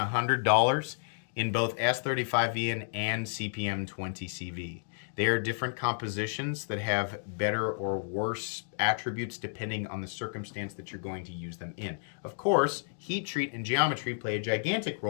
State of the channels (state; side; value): silent; right; digital silence